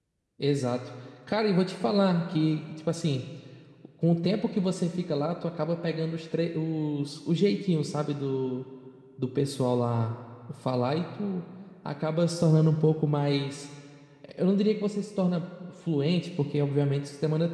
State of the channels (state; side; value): identical; both; correlation 1.00